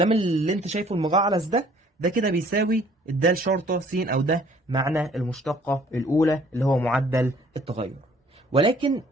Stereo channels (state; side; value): normal; both; correlation 0.57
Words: اللي انت شايفه المجعلص ده كده بيساوي الدال شرطه س، او ده معنى المشتقه الاولى اللي هو معدل التغير. ولكن